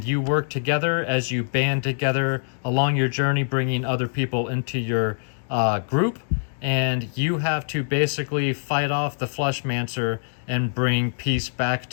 you work together as you band together along your journey, bringing other people into your group. And you have to basically fight off the Fleshmancer and bring peace back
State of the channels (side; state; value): right; silent; digital silence